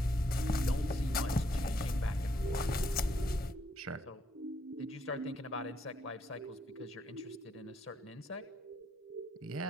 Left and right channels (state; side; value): normal; both; correlation 0.75